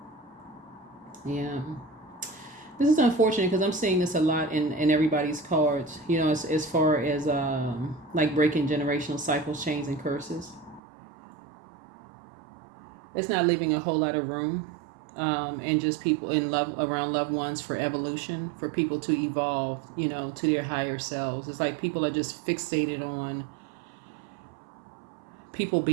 Yeah. This is unfortunate because I'm seeing this a lot in everybody's cards, as far as like breaking generational cycles, chains, and curses. It's not leaving a whole lot of room and just people in love around loved ones for evolution, for people to evolve, to their higher selves. It's like people are just fixated on people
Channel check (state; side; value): drops out; left; at 10.8 s